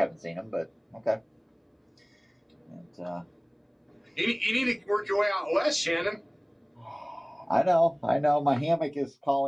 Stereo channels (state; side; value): identical; both; correlation 1.00